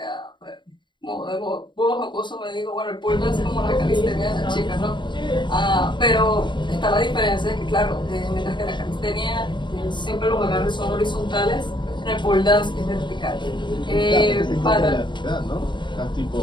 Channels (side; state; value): right; late; 0.22 ms